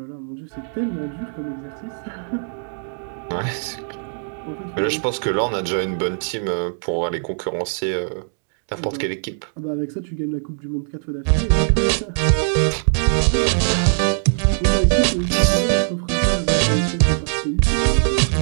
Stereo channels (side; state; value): left; silent; digital silence